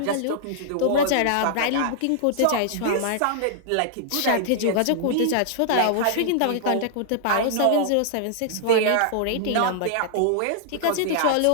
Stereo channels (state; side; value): different; both; correlation -0.01